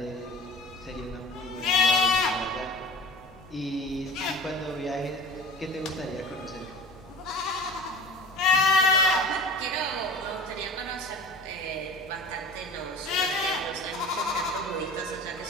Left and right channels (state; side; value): normal; both; correlation 0.39